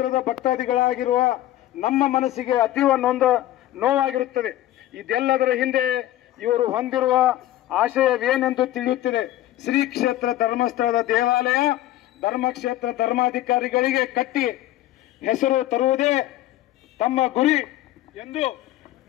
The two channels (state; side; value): quieter; right; 14.4 dB